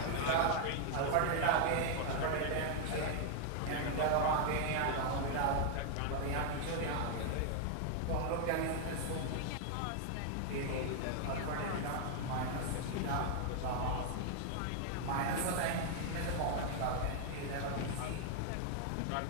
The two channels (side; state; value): both; different; correlation 0.00